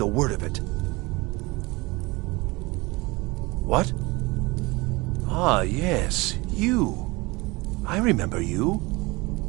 a word of it. What? Ah, yes, you. I remember you.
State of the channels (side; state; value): left; quieter; 23.8 dB